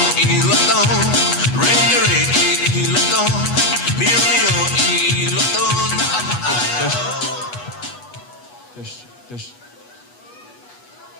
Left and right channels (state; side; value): late; right; 8.2 ms